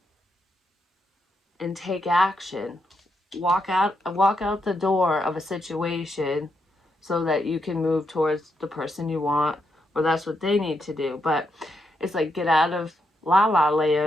and take action. Walk out the door of a situation so that you can move towards the person you want, or that's what they need to do. But it's like get out of la la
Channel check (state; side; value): normal; both; correlation 0.81